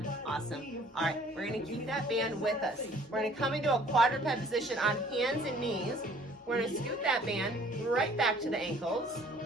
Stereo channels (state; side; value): normal; both; correlation 0.56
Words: Awesome. All right, we're gonna keep that band with us. We're gonna come into a quadruped position on hands and knees. We're gonna scoot that band right back to the ankles.